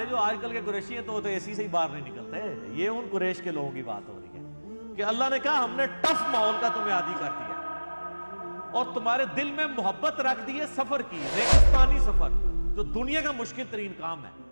جو آج کل کے قریشی ہیں تو اے سی سے ہی باہر نہیں نکلتے، یہ ان قریش کے لوگوں کی بات ہو رہی ہے کہ اللہ نے کہا ہم نے ٹف ماحول کا تمہیں عادی کر دیا اور تمہارے دل میں محبت رکھ دی ہے سفر کی، ریگستانی سفر جو دنیا کا مشکل ترین کام ہے،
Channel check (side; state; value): both; inverted; correlation -1.00